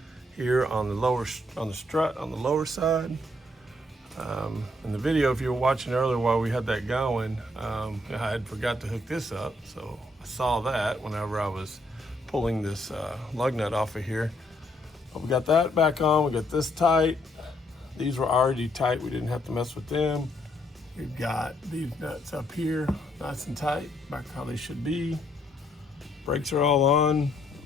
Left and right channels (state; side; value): normal; both; correlation 0.71